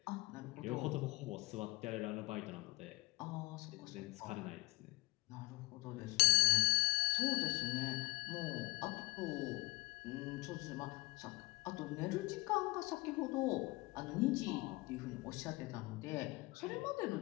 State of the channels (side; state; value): right; quieter; 24.1 dB